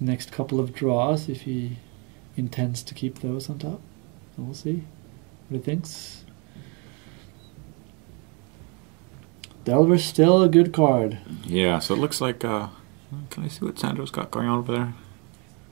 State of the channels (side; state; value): left; quieter; 33.1 dB